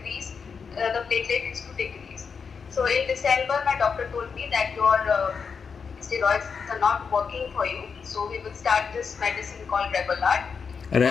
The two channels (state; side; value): quieter; right; 5.8 dB